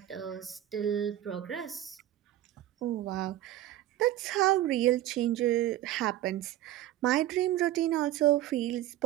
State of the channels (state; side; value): quieter; left; 13.7 dB